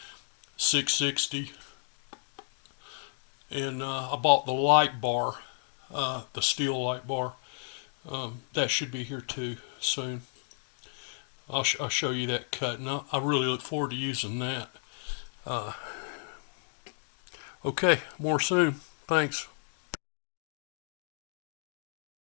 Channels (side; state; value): right; silent; 56 dB below the other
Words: 660. And I bought the light bar, the steel light bar. That should be here too soon. I'll show you that cut, and I really look forward to using that. Okay, more soon. Thanks.